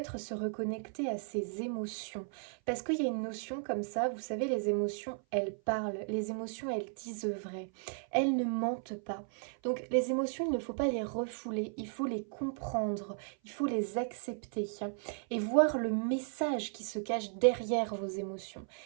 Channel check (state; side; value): silent; left; 54 dB below the other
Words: se reconnecter à ses émotions. Parce qu'il y a une notion comme ça, vous savez, les émotions, elles parlent. Les émotions, elles disent vrai. Elles ne mentent pas. Donc les émotions, il ne faut pas les refouler. Il faut les comprendre. Il faut les accepter. Et voir le message qui se cache derrière vos émotions.